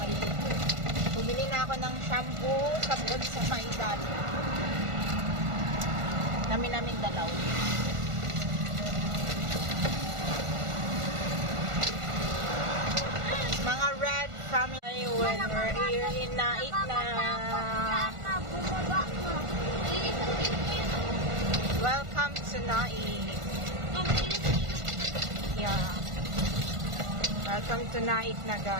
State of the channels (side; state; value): left; late; 1.5 ms